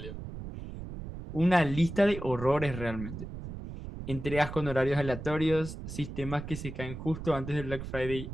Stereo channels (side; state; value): right; noise; rumble, 9 dB below the sound